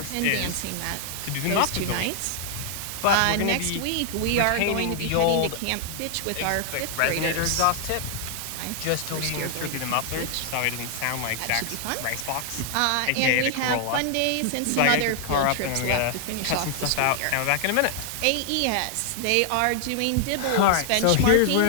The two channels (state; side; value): different; both; correlation 0.00